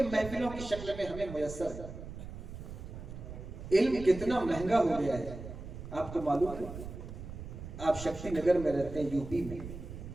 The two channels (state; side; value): noise; right; rumble, 10 dB below the sound